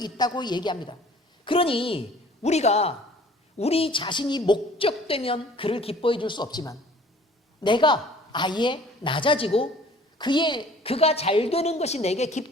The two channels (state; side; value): normal; both; correlation 0.51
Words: 있다고 얘기합니다. 그러니 우리가 우리 자신이 목적되면 그를 기뻐해 줄 수 없지만 내가 아예 낮아지고 그가 잘 되는 것이 내게